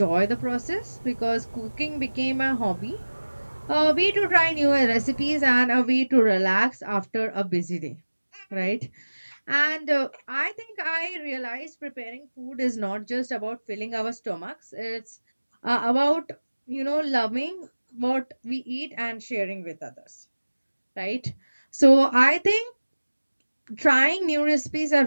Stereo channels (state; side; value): inverted; both; correlation -1.00